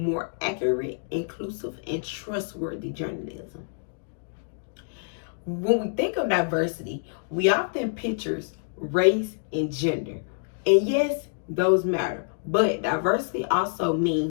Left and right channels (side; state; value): right; silent; digital silence